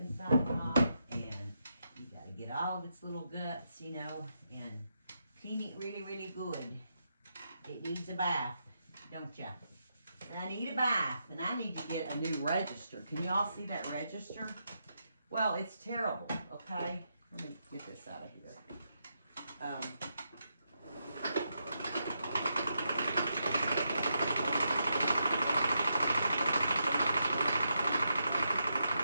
off, and you got to get all of its little guts, you know, and clean it really, really good. It needs a bath, don't ya? I need a bath, and I need to get a new register. Can you all see that register? Well, it's terrible, okay? Let me get this out of here.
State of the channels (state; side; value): inverted; both; correlation -0.82